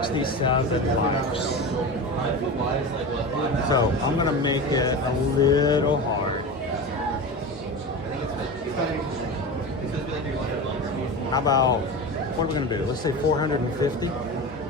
likes. So I'm gonna make it a little hard. How about, what are we gonna do? Let's say 450.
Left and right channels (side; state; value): both; normal; correlation 0.26